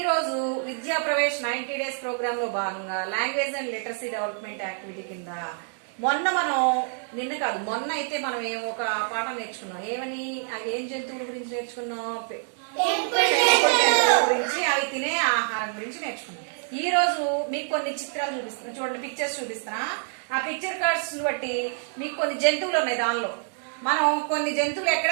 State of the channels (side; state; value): left; silent; 59 dB below the other